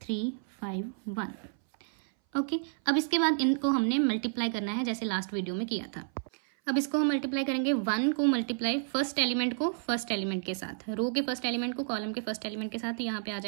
3 5 1। ओके, अब इसके बाद इनको हमने मल्टीप्लाई करना है जैसे लास्ट वीडियो में किया था। अब इसको हम मल्टीप्लाई करेंगे 1 को मल्टीप्लाई फर्स्ट एलिमेंट को फर्स्ट एलिमेंट के साथ, रो के फर्स्ट एलिमेंट को कॉलम के फर्स्ट एलिमेंट के साथ। तो यहाँ पे आ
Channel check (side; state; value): left; silent; 57 dB below the other